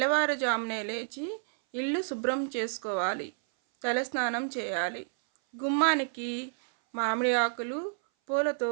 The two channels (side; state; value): left; silent; 58 dB below the other